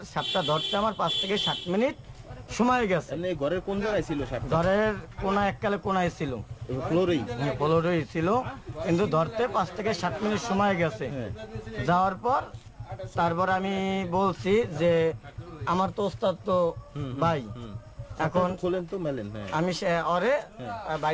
সাপটা ধরতে আমার 5 থেকে 7 মিনিট সময় গেছে। এমনি ঘরের কোন জায়গায় ছিল সাপটা? ঘরের কোনা এককালে কোনায় ছিল, ফ্লোরেই ছিল, কিন্তু ধরতে 5 থেকে 7 মিনিট সময় গেছে। যাওয়ার পর তারপর আমি বলছি যে আমার তো ওস্তাদ তো ভাই, এখন খোলেন তো মেলেন। আমি ওরে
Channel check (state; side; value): identical; both; correlation 1.00